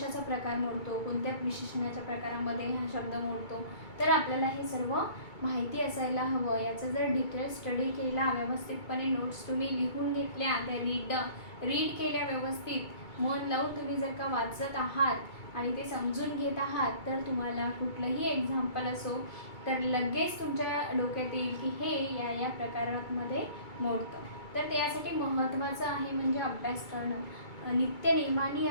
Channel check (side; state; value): right; late; 2.3 ms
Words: प्रकार मोडतो, कोणत्या विशेषणाच्या प्रकारामध्ये हा शब्द मोडतो, तर आपल्याला हे सर्व माहिती असायला हवं. याचा जर डिटेल स्टडी केला, व्यवस्थितपणे नोट्स तुम्ही लिहून घेतल्या, त्या रीड केल्या, व्यवस्थित मन लावून तुम्ही जर का वाचत आहात आणि ते समजून घेत आहात, तर तुम्हाला कुठलंही एक्झाम्पल असो तर लगेच तुमच्या डोक्यात येईल की हे या प्रकारामध्ये मोडतं. तर त्यासाठी महत्त्वाचं आहे म्हणजे अभ्यास करणं. नित्यनेमाने